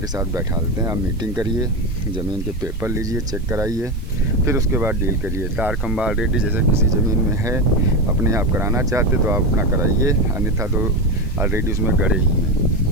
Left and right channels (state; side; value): noise; right; hiss, 28 dB below the sound